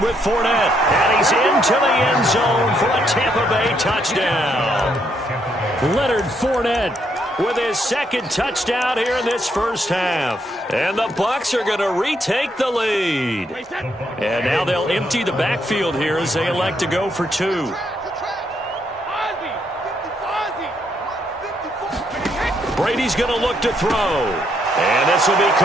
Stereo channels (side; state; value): both; normal; correlation 0.74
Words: with Fournette. And he's into the end zone for a Tampa Bay touchdown. Leonard Fournette with his second touchdown here in this first half. And the Bucs are going to retake the lead. And now they'll empty the backfield here as they elect to go for 2. Brady's going to look to throw. And this will be